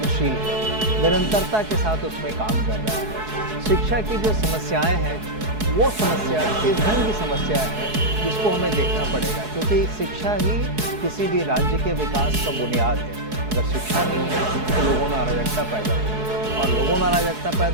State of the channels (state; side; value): late; left; 4.7 ms